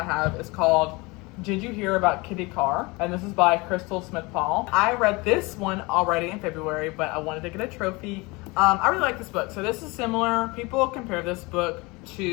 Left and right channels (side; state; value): right; quieter; 25.0 dB